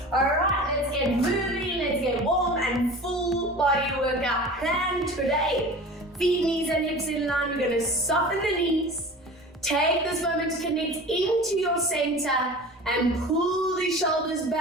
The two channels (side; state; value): both; normal; correlation 0.37